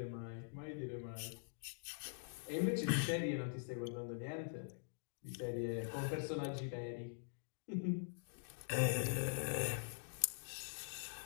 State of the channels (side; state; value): right; silent; digital silence